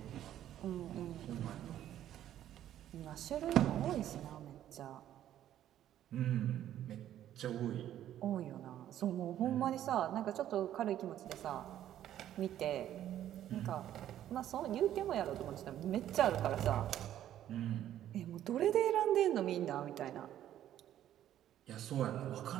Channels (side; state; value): left; quieter; 11.7 dB